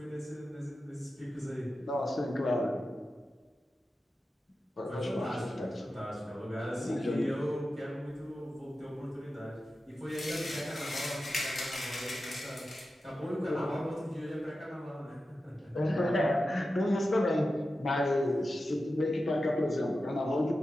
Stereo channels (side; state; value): both; normal; correlation 0.92